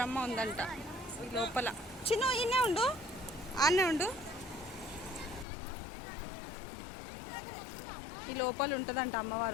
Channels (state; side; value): drops out; right; at 5.5 s